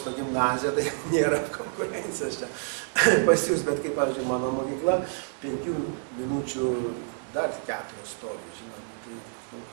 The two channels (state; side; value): silent; left; 59 dB below the other